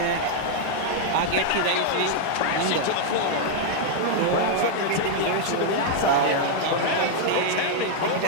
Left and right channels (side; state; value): both; different; correlation -0.01